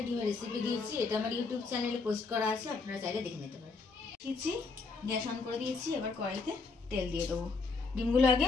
ডিমের রেসিপি দিয়েছি, এটা আমার ইউটিউব চ্যানেলে পোস্ট করা আছে, আপনারা চাইলে দেখে নিতে পারেন। দিয়েছি, গ্যাস অন করে দিয়েছি, এবার কড়াইতে তেল দিয়ে দেবো। ডিমগুলো আগে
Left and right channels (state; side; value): quieter; right; 4.3 dB